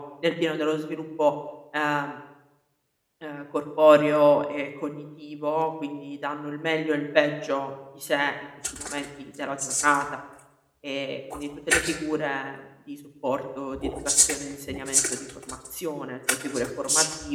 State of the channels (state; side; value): identical; both; correlation 1.00